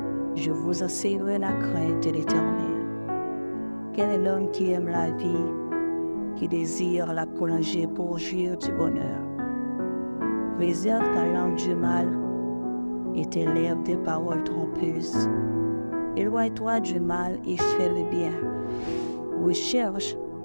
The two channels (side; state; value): both; inverted; correlation -1.00